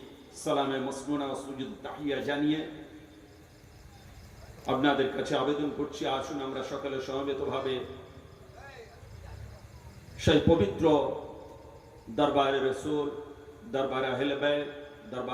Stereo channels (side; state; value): both; identical; correlation 1.00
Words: সালামে মসনুনা ও সুজুদ তাহিয়া জানিয়ে আপনাদের কাছে আবেদন করছি, আসুন আমরা সকলে সমবেতভাবে সেই পবিত্র দরবারে রসুল, দরবারে আহলে বাইত,